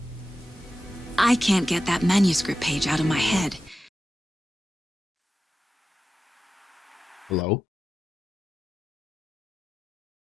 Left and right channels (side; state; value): both; normal; correlation 0.92